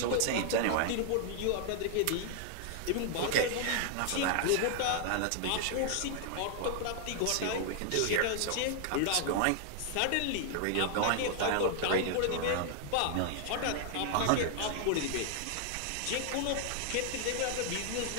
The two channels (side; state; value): both; different; correlation 0.00